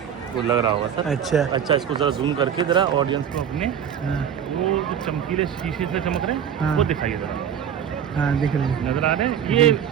वो लग रहा होगा सर। अच्छा इसको जरा जूम करके जरा ऑडियंस को अपने हाँ वो जो चमकीले शीशे से चमक रहे हैं हाँ। वो दिखाइए जरा। हाँ, दिख रहे हैं। नजर आ रहे हैं? ये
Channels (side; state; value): left; quieter; 8.7 dB